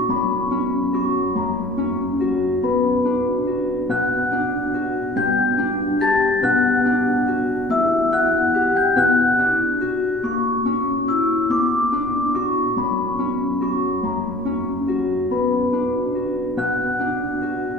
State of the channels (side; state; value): both; normal; correlation 0.52